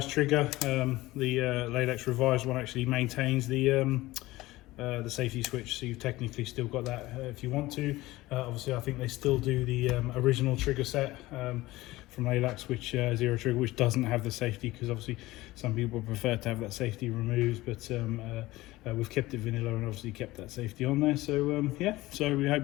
trigger, the Laylax revised one actually maintains the safety switch, so you've technically still got that if you want to. Obviously I think they still do the original trigger set from Laylax, which zero trigger, which doesn't have the safety, because obviously some people prefer to have that safety removed, but we've kept it vanilla and obviously kept that safety on there. So yeah, so we hope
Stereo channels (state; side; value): quieter; right; 18.5 dB